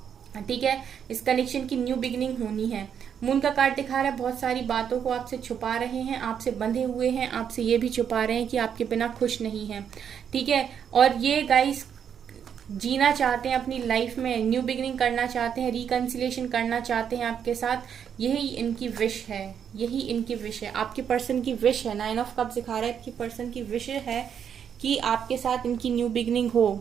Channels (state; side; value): quieter; left; 8.1 dB